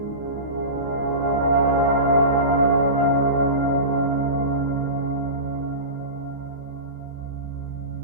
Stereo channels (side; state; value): left; late; 15 ms